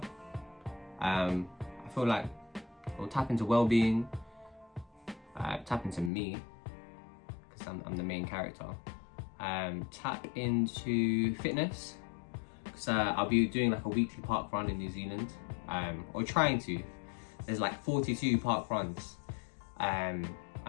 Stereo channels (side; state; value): right; drops out; at 6.1 s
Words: I feel like it will tap into well-being, tap into me, because I'm the main character. Tap into fitness, because I'll be doing like a weekly park run in New Zealand, or trying to. There's like 42 park runs, and